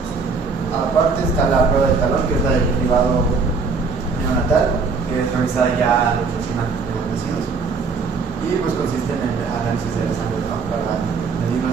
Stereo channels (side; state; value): left; quieter; 4.7 dB